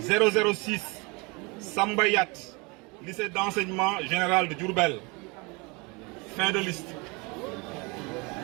006 Sambayat, lycée d'enseignement général de Diourbel. Fin de liste.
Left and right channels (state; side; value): quieter; left; 28.0 dB